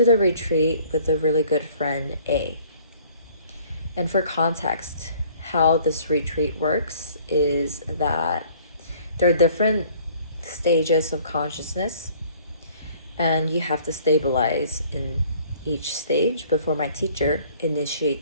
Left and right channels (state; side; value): inverted; both; correlation -0.55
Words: the retreat with a really good friend, A. And for context, how this retreat works is that there are different stages of consciousness, and you have to stabilize in each stage before my teacher